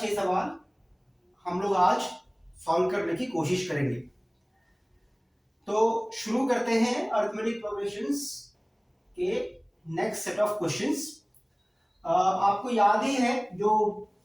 सवाल हम लोग आज सॉल्व करने की कोशिश करेंगे। तो शुरू करते हैं अरिथमेटिक प्रोग्रेशंस के नेक्स्ट सेट ऑफ क्वेश्चंस। आपको याद ही है जो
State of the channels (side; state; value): both; identical; correlation 1.00